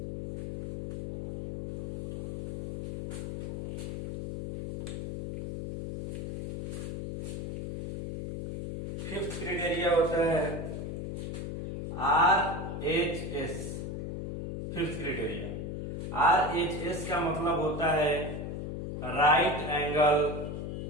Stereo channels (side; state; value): left; noise; hum, 5 dB below the sound